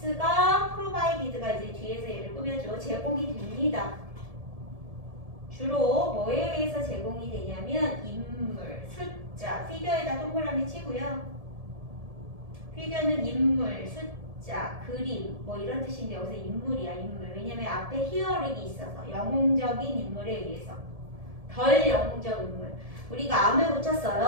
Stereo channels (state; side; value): late; left; 1.7 ms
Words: 프로바이디드가 이제 뒤에서 얘를 꾸며줘. 제공이 됩니다. 주로 뭐에 의해서 제공이 되냐면 인물, 숫자, 피규어에다 동그라미 치고요. 피규어는 인물, 숫자, 그림 뭐 이런 뜻인데 여기서 인물이야, 인물. 왜냐면 앞에 히어링이 있어서 영웅적인 인물에 의해서. 덜 영웅적 인물. 우리가 암을 고쳤어요.